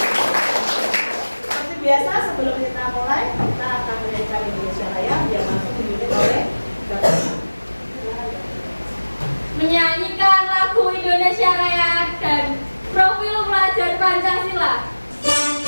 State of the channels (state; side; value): inverted; both; correlation -1.00